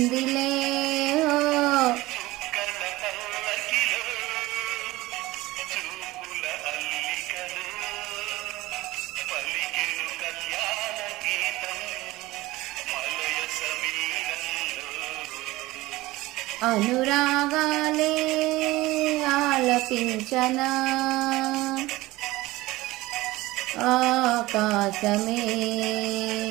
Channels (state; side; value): quieter; left; 19.2 dB